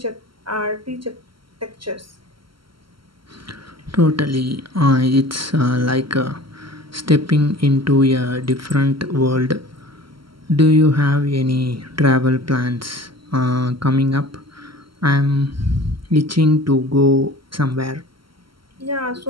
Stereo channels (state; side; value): late; left; 0.74 ms